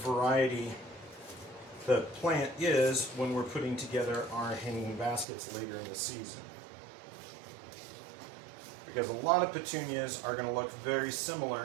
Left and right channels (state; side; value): drops out; left; at 5.2 s